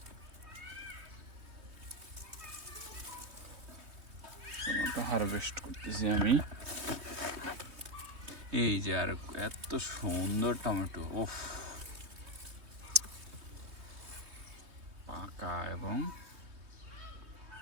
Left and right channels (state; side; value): late; left; 3.2 ms